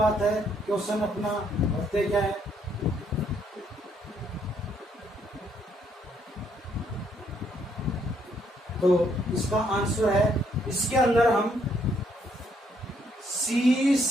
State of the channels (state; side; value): normal; both; correlation 0.70